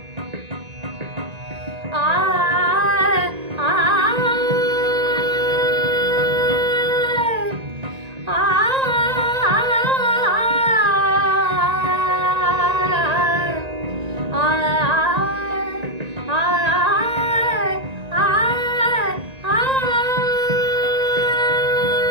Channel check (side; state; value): left; late; 1.9 ms